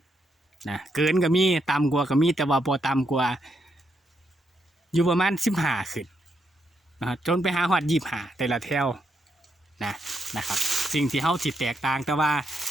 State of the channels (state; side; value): normal; both; correlation 0.79